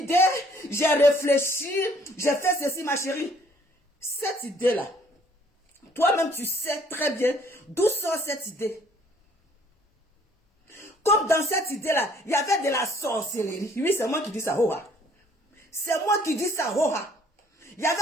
j'ai réfléchi, j'ai fait ceci, ma chérie. Cette idée-là, toi-même, tu sais très bien d'où sort cette idée. Comme dans cette idée-là, il y avait de la sorcellerie. Oui, c'est moi qui dis ça, Hoha. C'est moi qui dis ça, Hoha. Il y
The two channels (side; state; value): both; normal; correlation 0.60